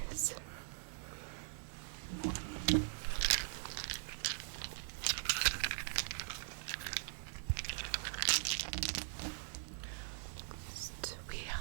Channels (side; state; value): left; silent; digital silence